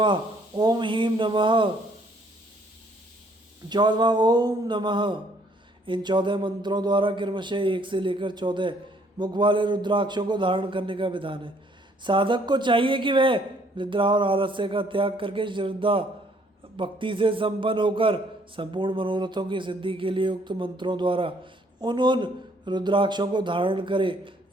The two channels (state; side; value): normal; both; correlation 0.63